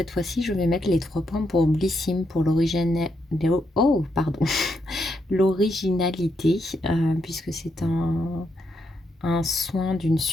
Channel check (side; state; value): both; normal; correlation 0.80